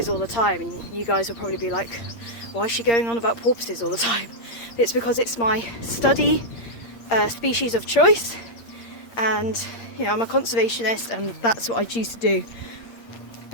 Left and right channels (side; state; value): right; late; 8.6 ms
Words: all the time, and you guys will probably be like, why is she going on about porpoises all the time? It's because it's my study species of choice, and you know, I'm a conservationist and that's what I choose to do.